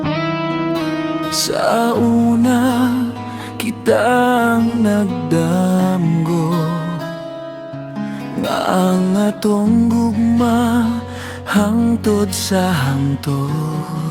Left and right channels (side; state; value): both; identical; correlation 1.00